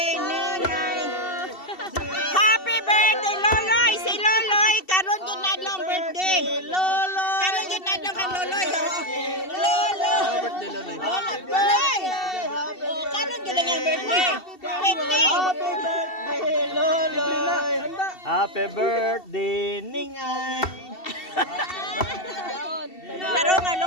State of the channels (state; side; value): late; right; 2.7 ms